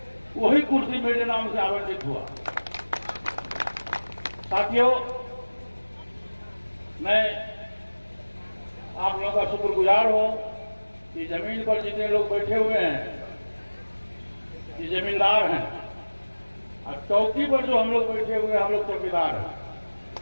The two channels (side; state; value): both; inverted; correlation -1.00